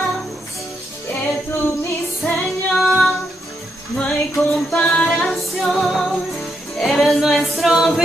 que tú, mi Señor, no hay comparación, eres nuestro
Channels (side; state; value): both; normal; correlation 0.79